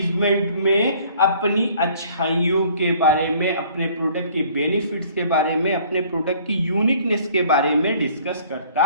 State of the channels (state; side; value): inverted; both; correlation -0.55